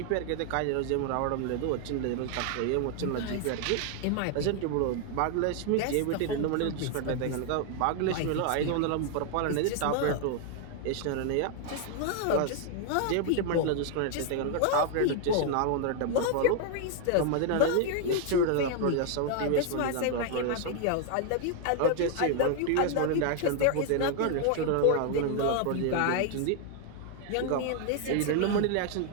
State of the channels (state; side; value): different; both; correlation 0.00